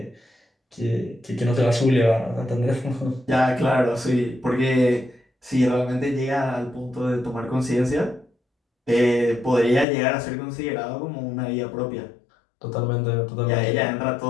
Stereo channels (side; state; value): right; drops out; at 9.9 s